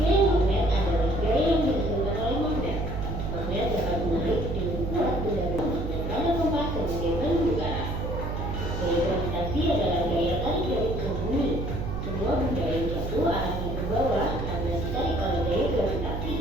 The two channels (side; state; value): right; noise; hum, 4 dB below the sound